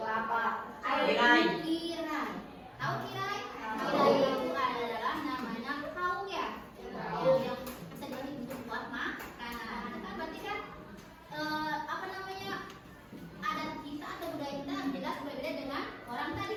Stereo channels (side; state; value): both; identical; correlation 1.00